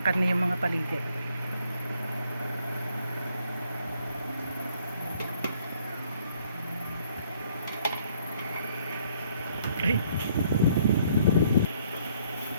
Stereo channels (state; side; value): inverted; both; correlation -0.65